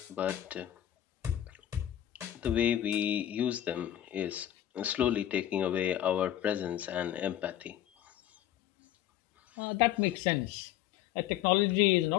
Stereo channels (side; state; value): right; quieter; 12.0 dB